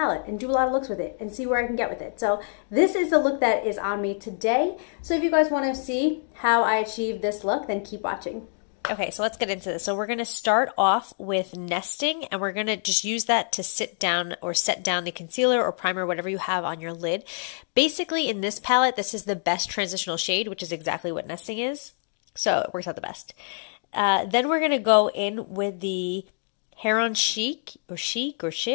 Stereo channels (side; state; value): right; silent; digital silence